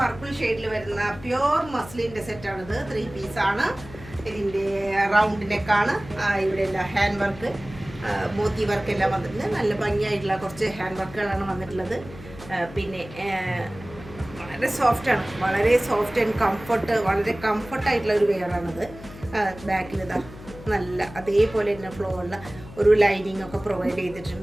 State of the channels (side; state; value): left; noise; hum, 16 dB below the sound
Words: ഷെയ്ഡിൽ വരുന്ന പ്യോർ മസ്ലിൻ്റെ സെറ്റാണിത്. 3 പീസാണ്. ഇതിൻ്റെ റൗണ്ട് നെക്കാണ്. ഇവിടെ എല്ലാം ഹാൻഡ് വർക്ക്, മോത്തി വർക്ക് എല്ലാം വന്നിട്ടുണ്ട്. നല്ല ഭംഗിയായിട്ടുള്ള കുറച്ച് ഹാൻഡ് വർക്കുകളാണ് വന്നിട്ടുള്ളത്. പിന്നെ വളരെ സോഫ്റ്റാണ്, വളരെ സോഫ്റ്റ് ആൻഡ് കംഫർട്ട്, വളരെ കംഫർട്ടായിട്ടുള്ള ഒരു വെയറാണിത്. ബാക്കിൽ ഇതാ നല്ല അതേപോലെ തന്നെ ഫ്ലോ ഉള്ള ഒരു ലൈനിങ് ഒക്കെ പ്രൊവൈഡ്